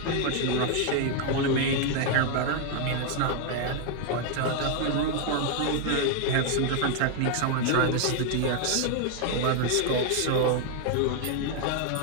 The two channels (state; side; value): different; both; correlation 0.00